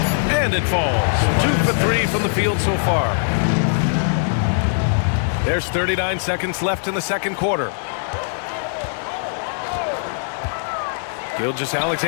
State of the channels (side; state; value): right; silent; digital silence